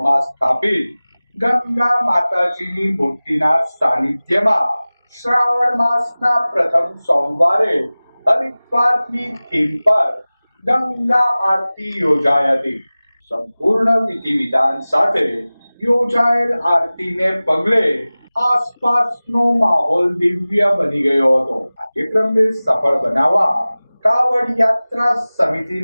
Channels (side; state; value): both; inverted; correlation -0.98